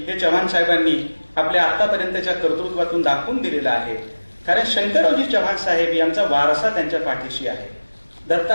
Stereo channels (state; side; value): inverted; both; correlation -1.00